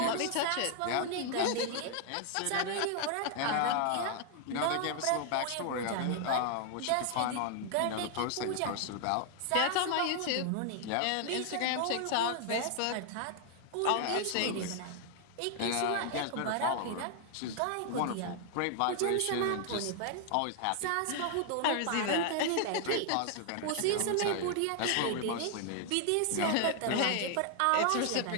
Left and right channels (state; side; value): different; both; correlation 0.00